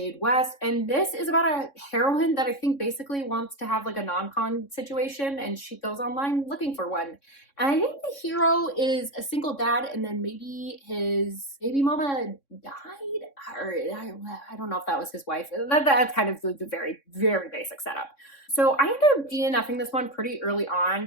West. And this is about a heroine that I think basically wants to have like a non-con situation, and she goes online looking for one. And I think the hero is a single dad, and then maybe his baby mama died, or I don't know if that was his wife. That's kind of the very, very basic setup. So I ended up DNFing this one pretty early on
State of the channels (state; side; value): late; right; 3.6 ms